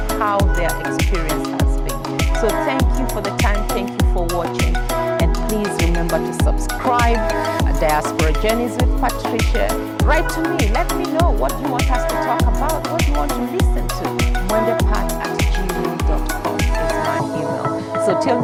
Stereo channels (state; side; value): identical; both; correlation 1.00